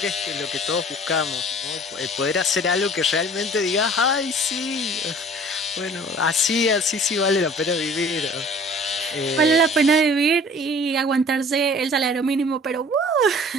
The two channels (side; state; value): both; normal; correlation 0.49